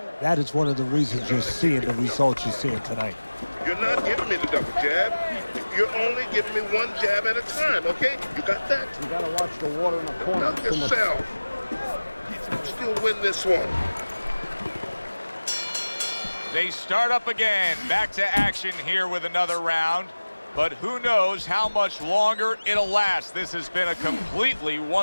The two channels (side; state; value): both; inverted; correlation -1.00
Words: That is one of the reasons you're seeing the results you're seeing tonight. You're not giving me the double jab. You're only giving me one jab at a time, okay? You got that? You got to watch the water in the corner. Knock yourself. Still win this one. They start up again. Back to action here with another round. But who knows how much longer it'll last. This has been a completely